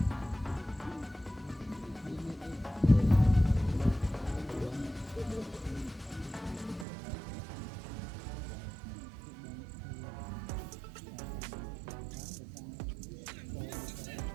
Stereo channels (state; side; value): drops out; left; at 6.9 s